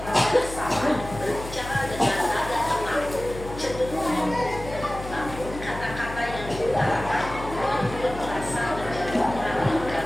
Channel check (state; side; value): noise; left; hum, 11 dB below the sound